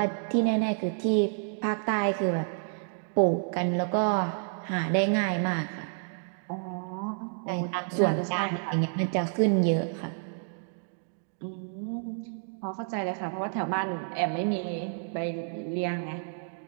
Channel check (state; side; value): silent; left; digital silence